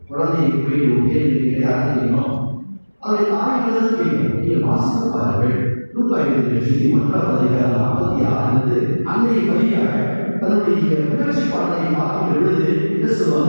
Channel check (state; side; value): inverted; both; correlation -1.00